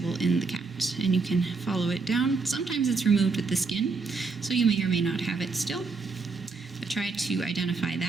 in the cat, and you can follow it down. Sometimes it's removed with the skin, so you may or may not have it still, but try to identify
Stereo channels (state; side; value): quieter; left; 4.4 dB